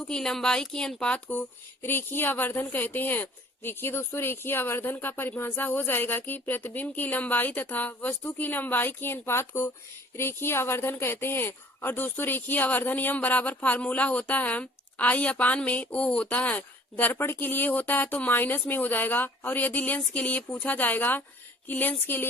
की लंबाई के अनुपात को रेखीय आवर्धन कहते हैं। देखिए दोस्तों, रेखीय आवर्धन का परिभाषा हो जाएगा कि प्रतिबिंब की लंबाई तथा वस्तु की लंबाई के अनुपात को रेखीय आवर्धन कहते हैं। और दोस्तों, रेखीय आवर्धन यम बराबर फार्मूला होता है आई अपान में ओ होता है। दर्पण के लिए होता है तो माइनस में हो जाएगा, और यदि लेंस के लिए पूछा जाएगा कि लेंस के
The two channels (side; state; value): both; normal; correlation 0.52